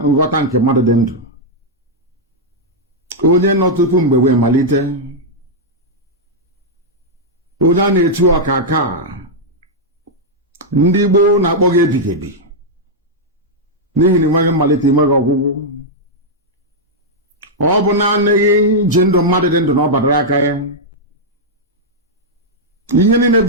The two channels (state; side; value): normal; both; correlation -0.05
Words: nghọta nke mmadụ dị ndụ. Onye nọ tupu mgbe wee malite. Onye a na-etu ọkaka, ndị Igbo na-akpọ gị ebighị ebi, n'ihi na enweghị mmalite, enweghị ọgwụgwụ. Ọ bụ naanị gị ji ndụ mmadụ dị ndụ na ọ badara aka ya. Ihe niile